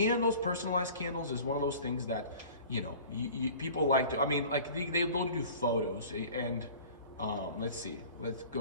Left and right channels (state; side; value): inverted; both; correlation -0.43